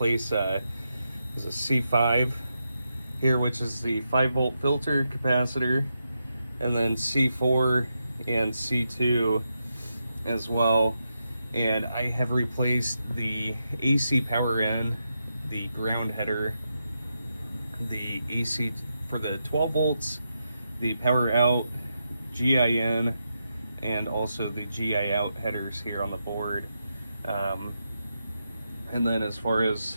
a C5 here, which is the 5-volt filter capacitor, and then C4 and C2 as well. And I have replaced the AC power in, the ground header, the AC for the 12 volts, the power out, GIN, and also the GI out headers here on the board. And then as far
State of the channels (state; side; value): inverted; both; correlation -0.85